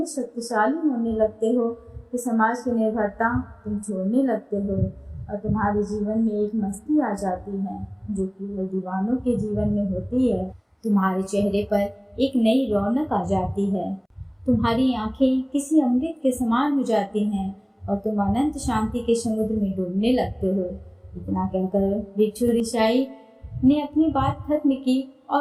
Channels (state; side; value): identical; both; correlation 1.00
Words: शक्तिशाली होने लगते हो कि समाज की निर्भरता तुम छोड़ने लगते हो और तुम्हारे जीवन में एक मस्ती आ जाती है जो केवल दीवानों के जीवन में होती है। तुम्हारे चेहरे पर एक नई रौनक आ जाती है, तुम्हारी आंखें किसी अमृत के समान हो जाती हैं और तुम अनंत शांति के समुद्र में डूबने लगते हो। इतना कहकर भिक्षु ऋषि ने अपनी बात खत्म की